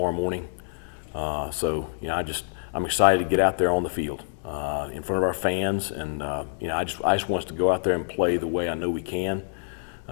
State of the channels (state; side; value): silent; right; 61 dB below the other